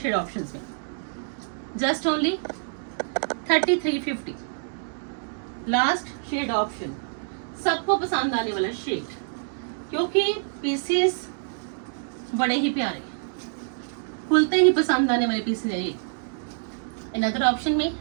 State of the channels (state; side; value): silent; left; digital silence